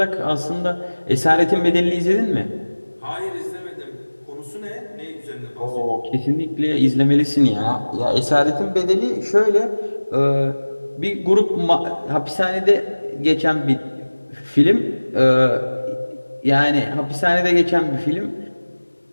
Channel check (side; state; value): both; inverted; correlation -1.00